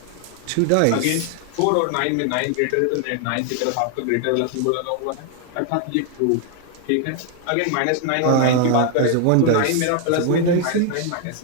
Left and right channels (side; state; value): both; different; correlation 0.00